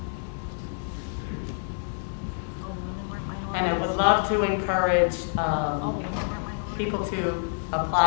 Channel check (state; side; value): silent; right; digital silence